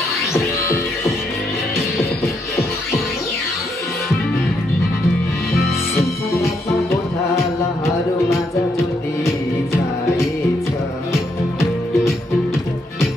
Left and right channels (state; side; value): normal; both; correlation 0.76